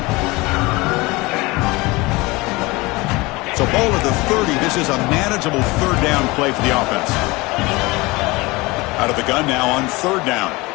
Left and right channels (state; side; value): quieter; right; 23.0 dB